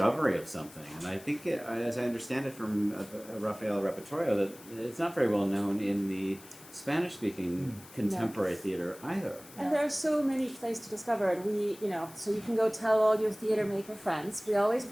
of something. And I think, as I understand it from Rafael Repertorio, that it's not very well known in the Spanish-speaking contemporary theater either. And there are so many plays to discover, and so you can go tell all your theater maker friends. We always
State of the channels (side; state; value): left; noise; hiss, 20 dB below the sound